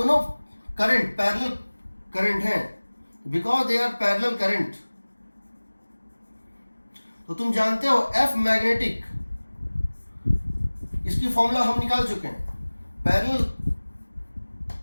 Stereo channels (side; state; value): both; inverted; correlation -1.00